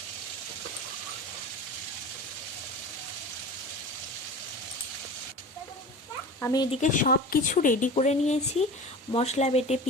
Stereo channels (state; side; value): normal; both; correlation 0.35